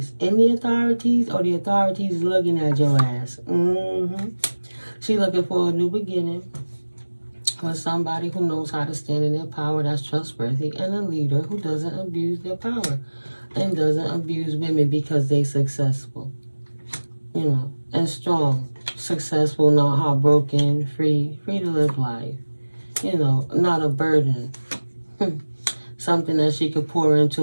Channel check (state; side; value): inverted; both; correlation -1.00